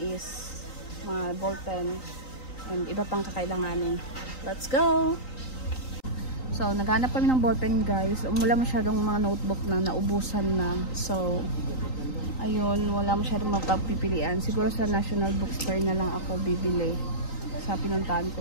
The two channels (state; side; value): late; right; 3.9 ms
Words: is mga ballpen and iba pang kakailanganin. Let's go! So, naghanap kami ng ballpen, guys. Wala masyadong mga notebook na naubusan na. So, ayun, wala masyadong mapagpipilian. Siguro sa National Bookstore na lang ako bibili sa pinuntahan